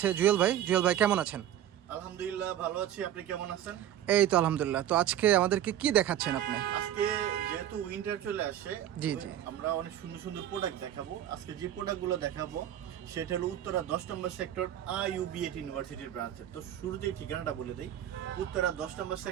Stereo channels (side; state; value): left; quieter; 11.4 dB